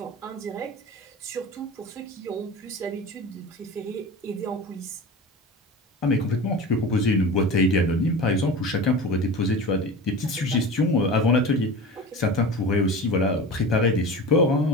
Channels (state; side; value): normal; both; correlation 0.31